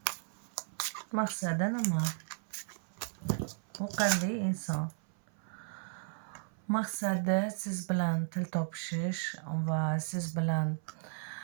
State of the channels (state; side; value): silent; left; 55 dB below the other